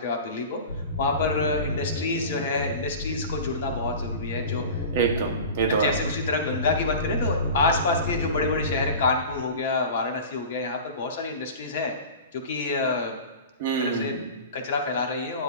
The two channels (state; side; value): inverted; both; correlation -0.35